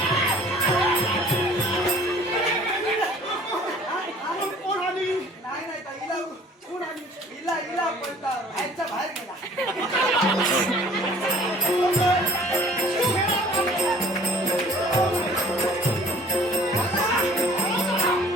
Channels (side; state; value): both; normal; correlation 0.51